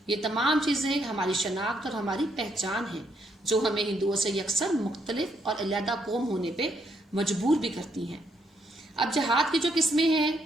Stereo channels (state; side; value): normal; both; correlation 0.74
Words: یہ تمام چیزیں ہماری شناخت اور ہماری پہچان ہیں، جو ہمیں ہندوؤں سے یکسر مختلف اور علیحدہ قوم ہونے پہ مجبور بھی کرتی ہیں۔ اب جہاد کی جو قسمیں ہیں